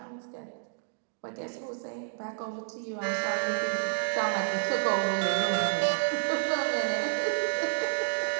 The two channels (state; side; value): silent; left; digital silence